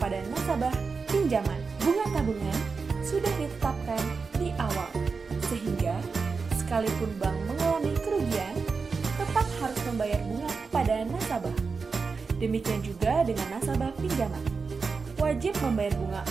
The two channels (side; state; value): left; quieter; 4.8 dB